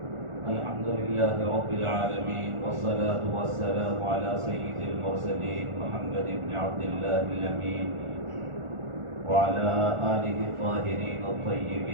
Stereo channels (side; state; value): left; late; 1.4 ms